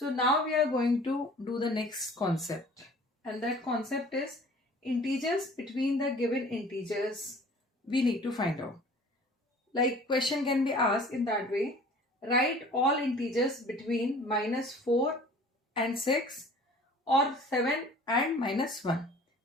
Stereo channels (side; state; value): both; normal; correlation 0.48